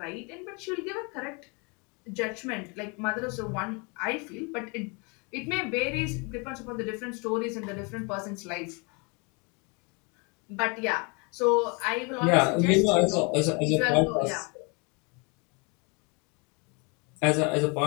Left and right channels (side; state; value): right; quieter; 31.5 dB